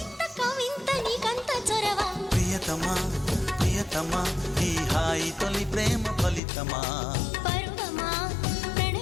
ప్రియతమా ప్రియతమా ఈ హాయి తొలి ప్రేమ ఫలితమా పరువమా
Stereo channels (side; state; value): right; drops out; at 6.4 s